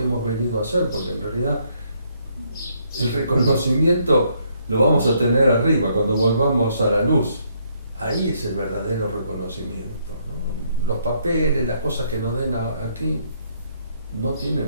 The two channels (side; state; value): both; inverted; correlation -0.71